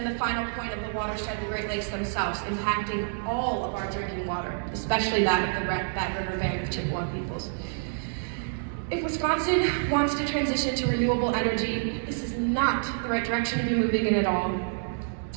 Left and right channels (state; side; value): silent; left; digital silence